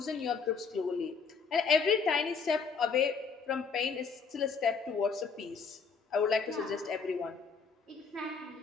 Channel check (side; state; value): right; quieter; 5.3 dB